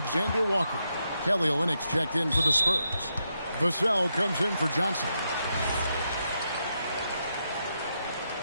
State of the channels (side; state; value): both; inverted; correlation -0.82